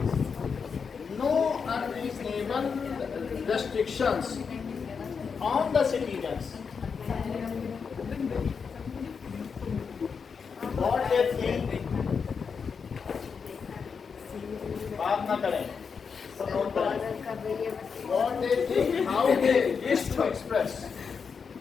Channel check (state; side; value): quieter; right; 5.9 dB